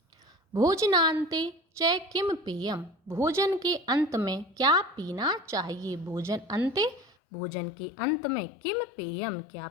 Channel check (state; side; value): drops out; right; at 7.1 s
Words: भोजनान्ते च किम पेयम, भोजन के अंत में क्या पीना चाहिए? भोजन अंते, भोजन के अंत में किम पेयम, क्या